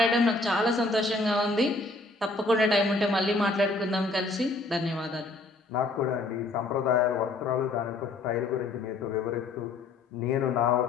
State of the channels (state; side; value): quieter; right; 3.2 dB